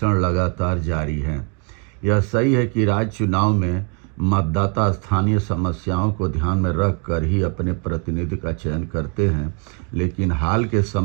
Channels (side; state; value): left; quieter; 37.2 dB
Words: लगातार जारी हैं। यह सही है कि राज्य चुनाव में मतदाता स्थानीय समस्याओं को ध्यान में रख कर ही अपने प्रतिनिधि का चयन करते हैं, लेकिन हाल के